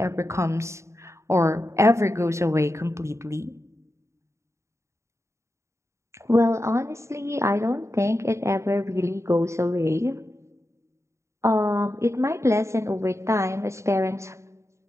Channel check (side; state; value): left; late; 0.14 ms